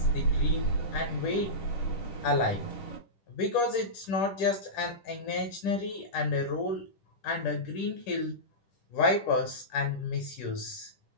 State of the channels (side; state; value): right; late; 10 ms